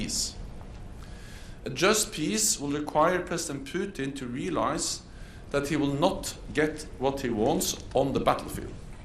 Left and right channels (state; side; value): identical; both; correlation 1.00